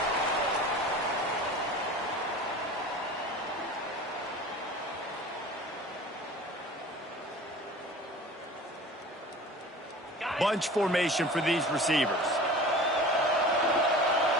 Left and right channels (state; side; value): normal; both; correlation 0.40